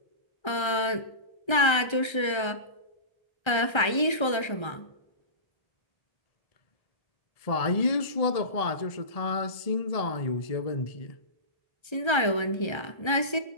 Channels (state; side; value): late; right; 1.3 ms